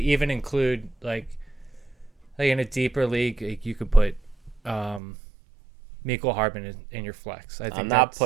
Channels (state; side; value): drops out; left; at 5.0 s